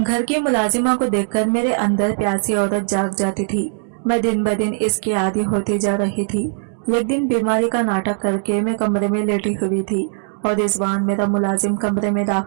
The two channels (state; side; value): silent; left; digital silence